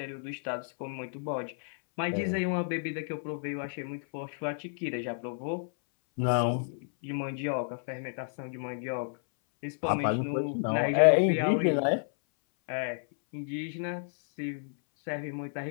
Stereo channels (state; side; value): silent; right; 57 dB below the other